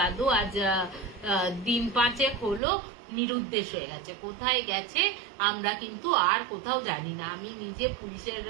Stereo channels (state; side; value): drops out; left; at 2.6 s